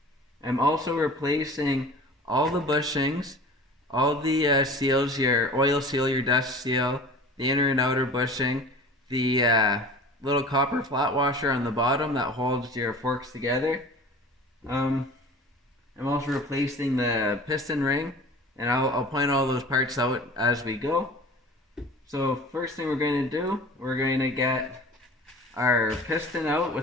I'm also replacing all the bushings, all the seals, your oil seal, your dust seal, the inner and outer bushing, the little copper flat washer on the bottom that holds your forks together. I'm also replacing the piston ring, and I'll point all those parts out as we go. So first thing we're going to do, we're going to get our piston out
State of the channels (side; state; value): both; normal; correlation 0.40